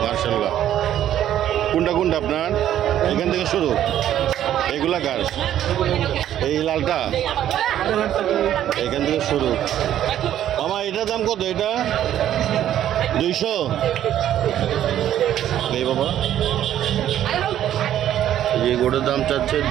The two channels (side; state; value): left; quieter; 11.4 dB